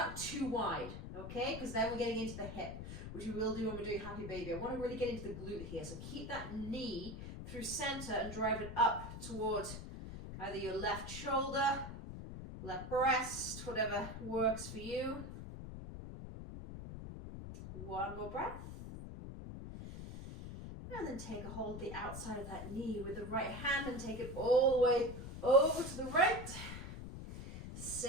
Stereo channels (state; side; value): noise; left; rumble, 9 dB below the sound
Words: too wide, okay? Because then we're getting into the hip, which we will do when we're doing happy baby. I want to really get into the glute here. So keep that knee through center and drive it up towards either your left shoulder, left breast, whatever works for you. One more breath. And then take a hold of the outside of that knee with the right hand and take it all the way over to the right.